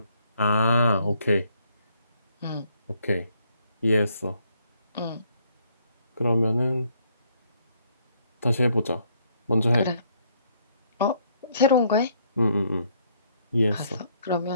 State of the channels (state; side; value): inverted; both; correlation -0.68